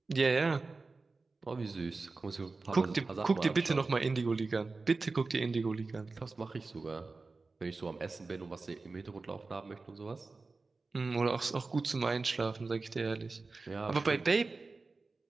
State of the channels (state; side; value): quieter; left; 3.8 dB